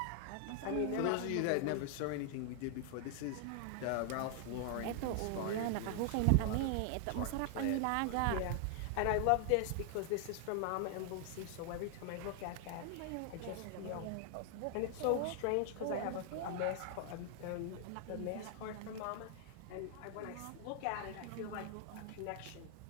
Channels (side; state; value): both; different; correlation 0.00